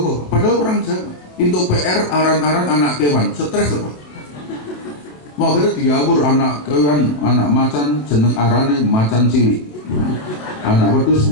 padahal orang Jawa. Untuk PR aran-aran anak kewan, stres apa? Mau kira diawur anak kewan, anak macan jeneng arane macan cilik, anak wedus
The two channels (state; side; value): late; right; 27 ms